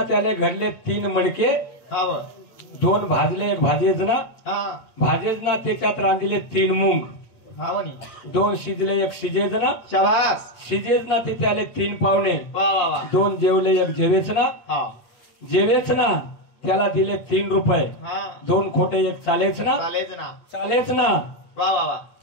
त्याले घडले तीन मडके हा व दोन भाजले एक भाजेच ना हा भाजेच ना त्याच्यात रांधले तीन मूग हा वनी दोन शिजले एक शिजेच ना शाबास शिजेच ना ते त्याले तीन पावणे वा वा वा दोन जेवले एक जेवेच ना हा जेवेच ना त्याला दिले 3 रुपये हा दोन खोटे एक चालेच ना चालेच ना चालेच ना वा वा वा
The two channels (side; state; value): right; late; 8.6 ms